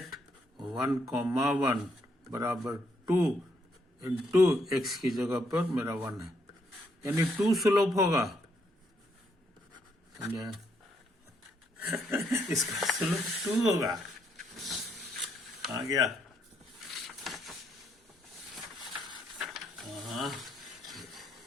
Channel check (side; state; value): both; normal; correlation 0.73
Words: 1,1 बराबर 2 इंटू एक्स की जगह पर मेरा 1 है, यानी 2 स्लोप होगा। समझे, इसका स्लोप 2 होगा, आ गया। हाँ,